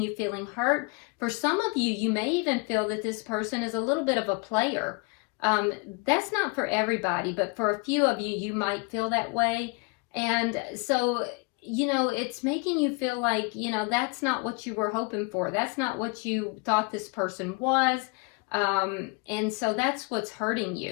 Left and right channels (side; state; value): right; quieter; 29.4 dB